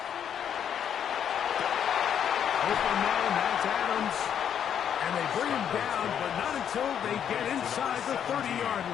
Open man, that's Adams. And they bring him down, but not until they get inside the 30-yard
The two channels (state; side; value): quieter; right; 8.8 dB